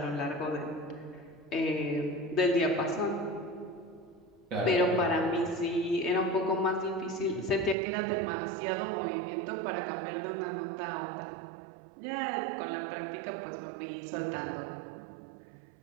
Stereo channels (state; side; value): drops out; left; at 7.8 s